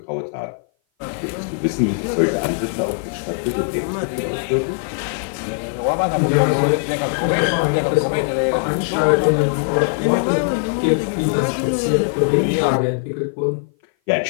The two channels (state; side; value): silent; right; 57 dB below the other